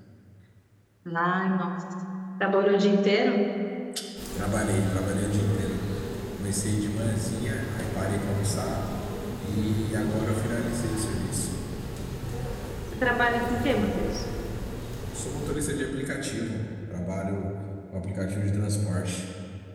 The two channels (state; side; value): identical; both; correlation 1.00